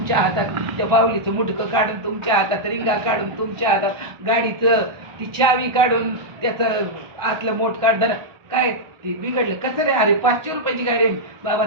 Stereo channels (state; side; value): late; left; 1.4 ms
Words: हातात, त्या बाहुलीचं मुडकं काढून तुमच्या हातात, रिंगा काढून तुमच्या हातात, गाडीचं ती चावी काढून त्याचं आतलं मोठ काढ. काय ते बिघडलं कसं रे? अरे 500 रुपयाची गाडी आहे बाबा,